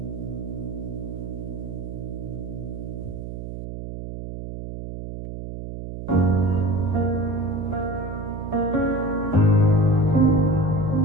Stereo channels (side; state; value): right; noise; hum, 8 dB below the sound